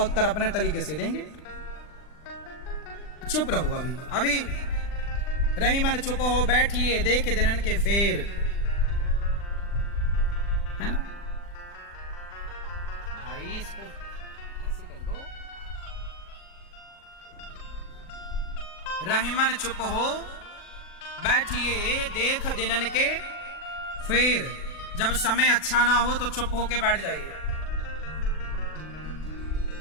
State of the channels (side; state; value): right; late; 40 ms